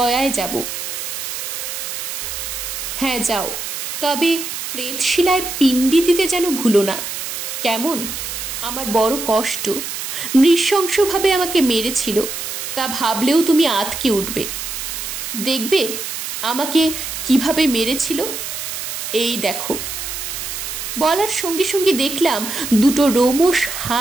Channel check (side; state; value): right; noise; hiss, 6 dB below the sound